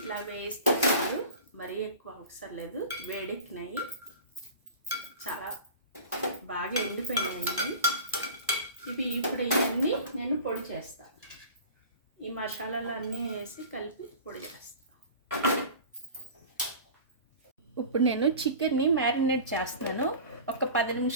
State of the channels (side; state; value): both; inverted; correlation -0.38